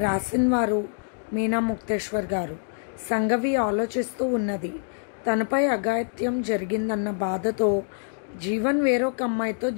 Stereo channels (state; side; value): silent; right; digital silence